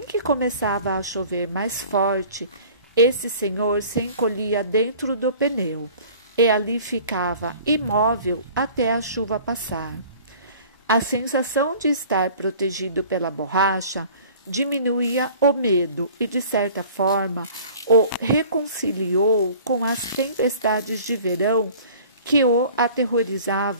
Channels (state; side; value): inverted; both; correlation -0.47